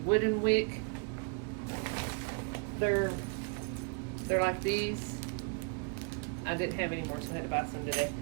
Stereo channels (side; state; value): left; quieter; 36.2 dB